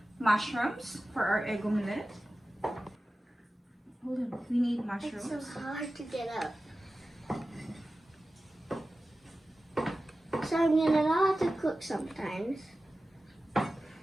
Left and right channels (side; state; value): both; normal; correlation 0.95